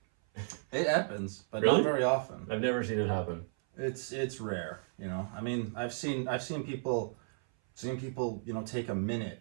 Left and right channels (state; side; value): silent; left; 55 dB below the other